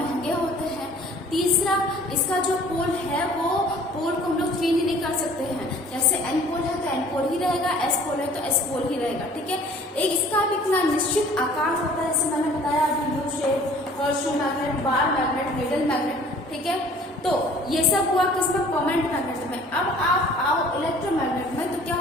होते हैं। तीसरा, इसका जो पोल है वो पोल को हम लोग चेंज नहीं कर सकते हैं, जैसे एन पोल है तो एन पोल ही रहेगा, एस पोल है तो एस पोल ही रहेगा, ठीक है। एक इसका भी इतना निश्चित आकार होता है, जैसे मैंने बताया अभी, U shape, horseshoe magnet, bar magnet, needle magnet, ठीक है। तो ये सब हुआ किसमें, परमानेंट मैग्नेट में। अब आप आओ इलेक्ट्रोमैग्नेट में, तो क्या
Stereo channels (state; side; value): normal; both; correlation 0.52